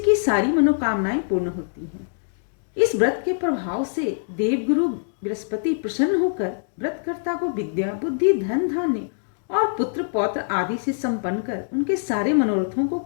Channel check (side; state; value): right; silent; digital silence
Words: सारी मनोकामनाएं पूर्ण होती हैं। इस व्रत के प्रभाव से देवगुरु बृहस्पति प्रसन्न होकर व्रतकर्ता को विद्या, बुद्धि, धन, धान्य और पुत्र पौत्र आदि से संपन्न कर उनके सारे मनोरथों को